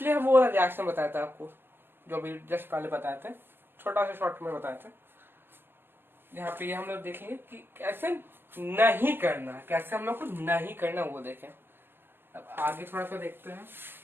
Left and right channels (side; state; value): left; late; 0.10 ms